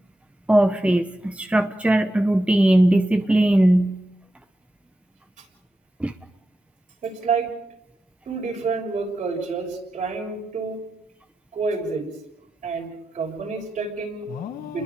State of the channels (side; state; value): both; normal; correlation 0.89